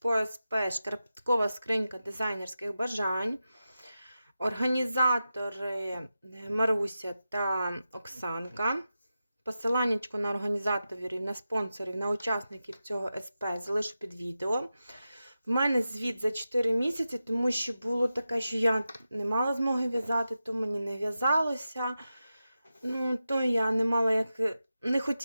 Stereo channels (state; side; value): inverted; both; correlation -0.92